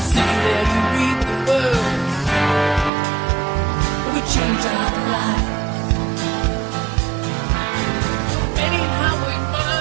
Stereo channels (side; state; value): left; drops out; at 2.9 s